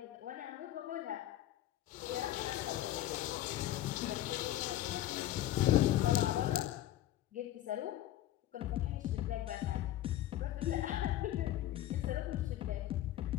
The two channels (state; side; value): quieter; right; 13.6 dB